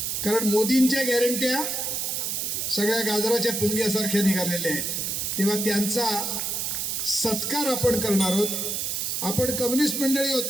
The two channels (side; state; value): right; noise; hiss, 1 dB below the sound